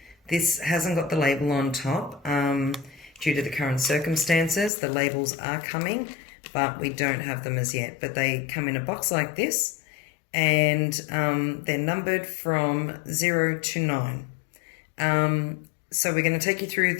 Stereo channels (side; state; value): right; drops out; at 4.7 s